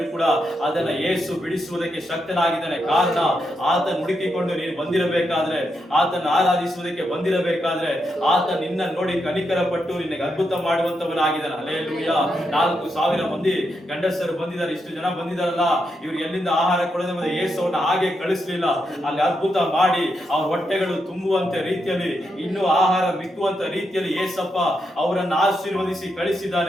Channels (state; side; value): normal; both; correlation 0.83